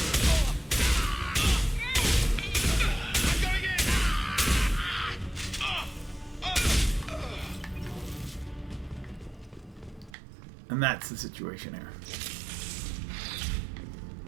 And that's the situation here.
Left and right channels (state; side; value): drops out; left; at 10.2 s